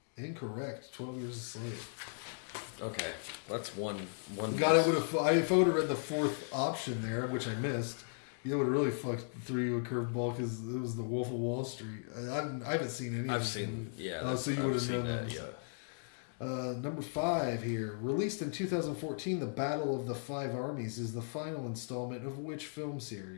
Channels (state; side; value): silent; right; digital silence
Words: Incorrect. 12 Years a Slave. Okay, that's one. God, if I would have read the fourth option there, which I missed, you would have really threw you a curveball because it was The Wolf of Wall Street. I haven't seen any. I've seen, yeah. So you would have known that. that. Yeah. Number 5 here. Released in 2014, The Battle of the Five Armies is the final installment of which film